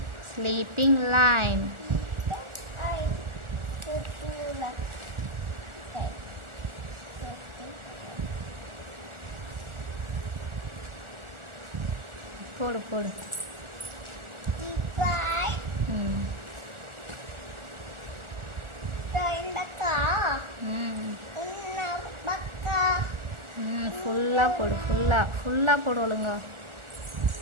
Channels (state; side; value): late; left; 1.4 ms